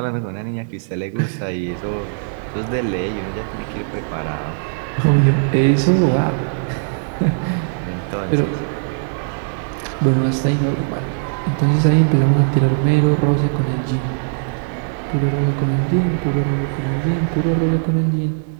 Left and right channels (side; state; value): left; silent; 57 dB below the other